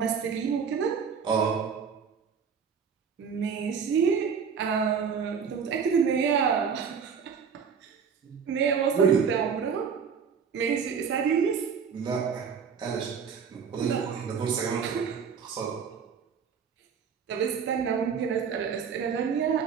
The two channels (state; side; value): quieter; left; 6.6 dB